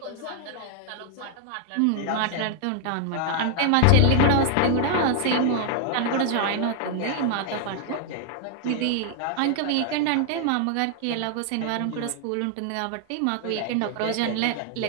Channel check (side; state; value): both; different; correlation 0.00